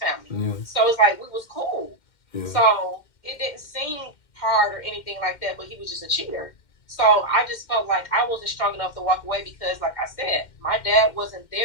Yeah. So it's like we was cool. Yeah. So it didn't seem hard or anything like that, but he was just a cheater. So I just felt like I wasn't strong enough to walk away because, like I said, my dad wasn't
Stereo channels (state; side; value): late; right; 2.1 ms